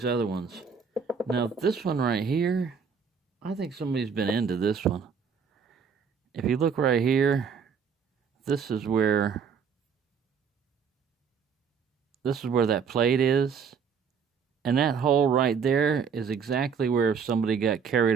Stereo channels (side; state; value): left; quieter; 6.3 dB